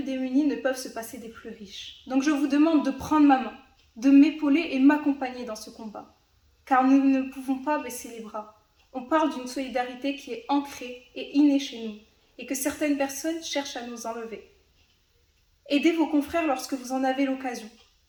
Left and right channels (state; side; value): identical; both; correlation 1.00